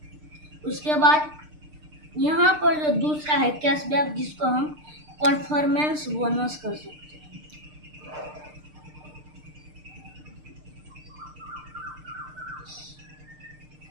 उसके बाद यहाँ पर जो दूसरा है कैशबैक, जिसको हम परफॉर्मेंस बोनस कर सकते हैं,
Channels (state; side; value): late; left; 6.6 ms